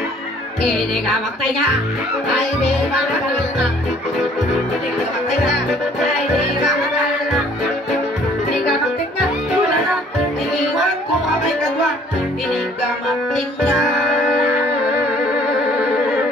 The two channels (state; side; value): normal; both; correlation 0.57